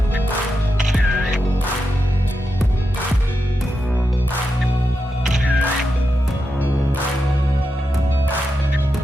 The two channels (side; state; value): both; normal; correlation 0.87